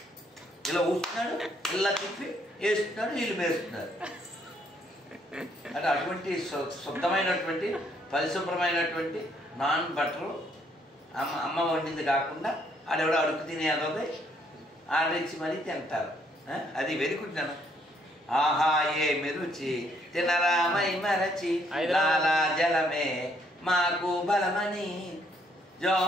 ఇలా ఊస్తున్నాడు, ఇలా తిప్పి వేస్తున్నాడు, వీళ్ళు వేస్తున్నారు. అంటే అటువంటి శుద్ధమైనటువంటి పరిశుభ్రమైనటువంటి నాన్ బటర్ అమ్మ వండింది కాకుండా ఆడెవడో అడుగు తినేది ఆర్డర్ ఇచ్చి మరీ తింటారు. అది వెరుకుంటున్నాను. ఆహా ఏమి రుచి తినరామై మరచి లాలా జలమే మాకు బలమని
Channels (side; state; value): both; normal; correlation 0.69